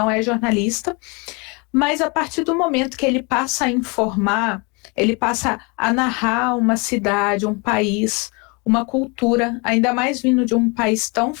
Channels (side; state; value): right; quieter; 30.0 dB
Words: é jornalista, mas a partir do momento que ele passa a informar, ele passa a narrar uma cidade, um país, uma cultura, ainda mais vindo de um país tão